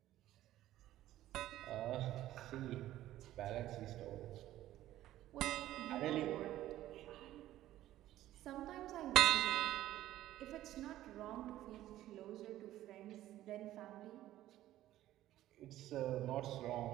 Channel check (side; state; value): left; quieter; 14.1 dB